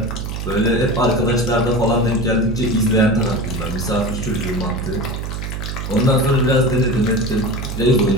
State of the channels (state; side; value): noise; right; hum, 5 dB below the sound